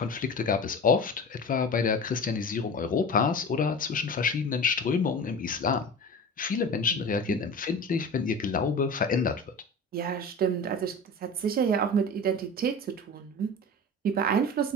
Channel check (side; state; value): both; normal; correlation 0.33